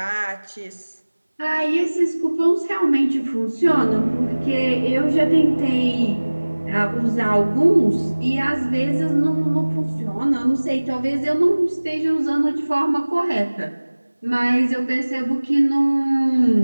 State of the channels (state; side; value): inverted; both; correlation -1.00